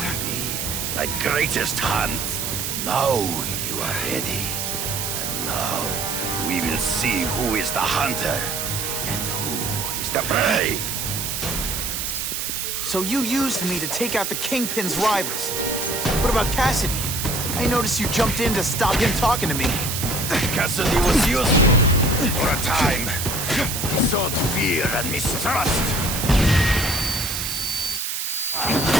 be. My greatest hunt. Now you are ready. And now we will see who is the hunter and who is the prey. So you used me to take out the Kingpin's rivals. What about Cassidy? I noticed you jumped in to stop him talking to me. Cassidy was useful for a time. He sowed fear and mistrust.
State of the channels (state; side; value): noise; right; hiss, 2 dB below the sound